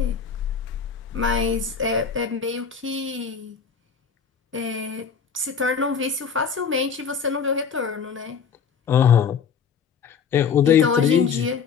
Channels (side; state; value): right; quieter; 6.4 dB